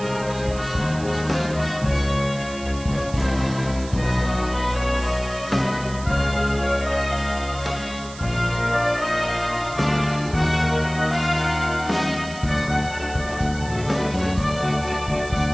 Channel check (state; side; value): noise; right; hiss, 16 dB below the sound